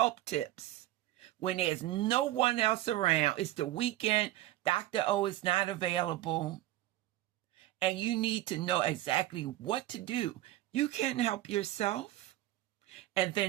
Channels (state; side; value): quieter; left; 15.7 dB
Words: tips. When there's no one else around, it's the weekend, Dr. O is not available, and you need to know exactly what to do. You can help yourself and